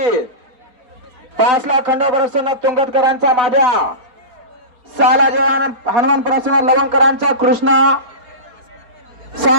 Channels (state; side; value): late; left; 4.3 ms